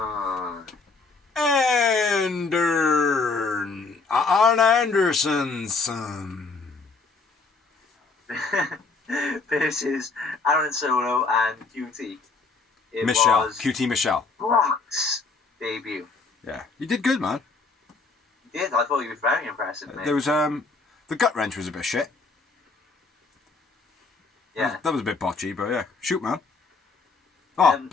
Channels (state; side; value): quieter; right; 4.1 dB